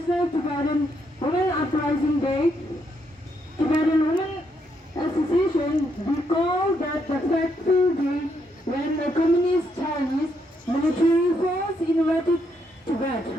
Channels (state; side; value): normal; both; correlation 0.76